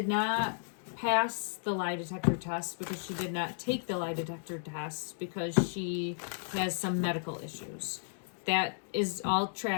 not pass the lie detector test because she did not take the lie detector test because she has some medical issues. That is all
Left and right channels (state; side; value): silent; right; digital silence